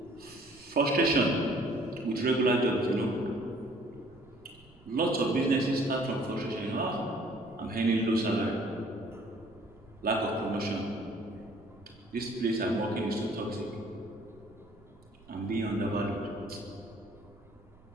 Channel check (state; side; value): noise; right; rumble, 26 dB below the sound